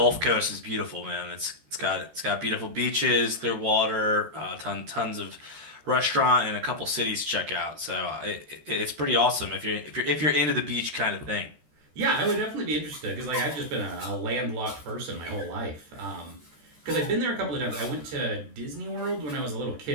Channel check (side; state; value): left; late; 13 ms